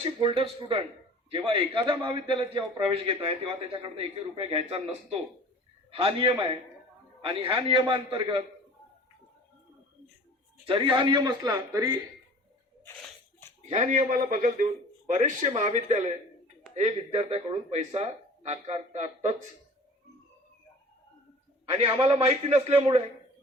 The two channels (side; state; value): both; normal; correlation 0.44